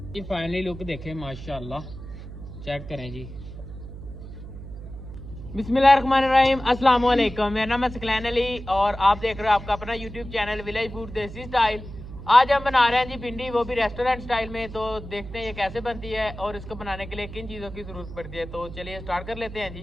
ये फाइनली लुक देखें माशाल्लाह, चेक करें जी। बिस्मिल्लाहिर्रहमानिर्रहीम, अस्सलाम वालेकुम। मेरा नाम है सकलैन अली और आप देख रहे हो आपका अपना यूट्यूब चैनल विलेज फूड देसी स्टाइल। आज हम बना रहे हैं जी भिंडी, वो भी रेस्टोरेंट स्टाइल में। तो देखते हैं ये कैसे बनती है और इसको बनाने के लिए किन चीज़ों की ज़रूरत पड़ती है। तो चलिए स्टार्ट कर लेते हैं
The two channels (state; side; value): noise; right; hum, 12 dB below the sound